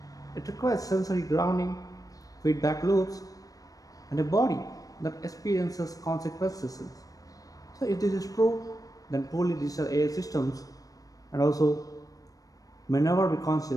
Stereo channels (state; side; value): late; right; 0.17 ms